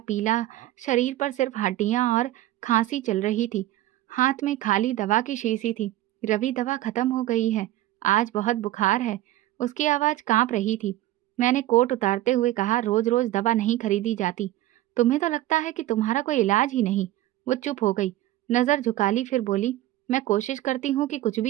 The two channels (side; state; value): left; quieter; 15.4 dB